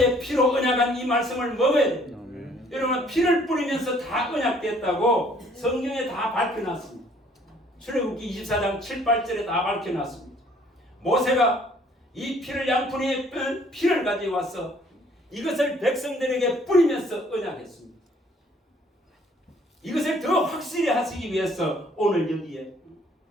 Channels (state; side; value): normal; both; correlation 0.60